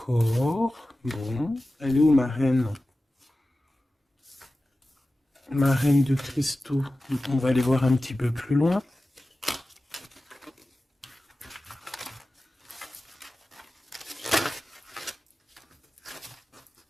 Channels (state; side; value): normal; both; correlation 0.95